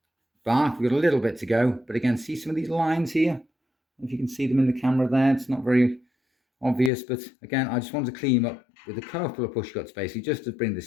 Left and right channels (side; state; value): right; drops out; at 6.9 s